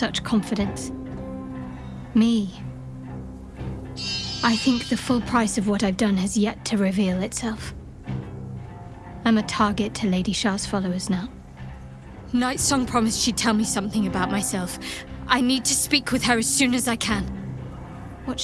confidence. Me. I think the full price of what I've done has yet to reveal itself. I'm a target to Lady Shah's followers now. Night Song promised she'd tell me something about myself. I need to speak with her as soon as I can. What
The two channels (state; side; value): identical; both; correlation 1.00